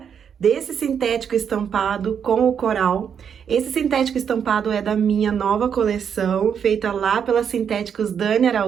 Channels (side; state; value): left; quieter; 7.6 dB